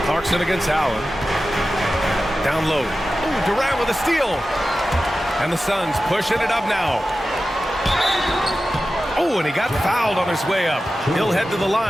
Clarkson against Allen. Down low. Ooh, Durant with a steal. And the Suns pushing it up now. Oh, and he got fouled on his way up. He'll head to the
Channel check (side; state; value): both; normal; correlation 0.94